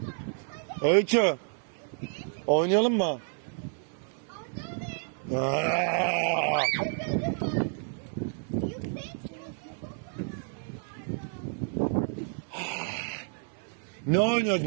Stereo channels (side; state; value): left; silent; 58 dB below the other